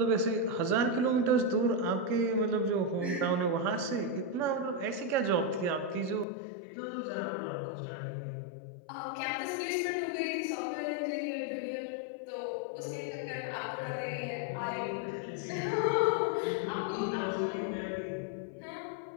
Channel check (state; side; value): drops out; right; at 6.2 s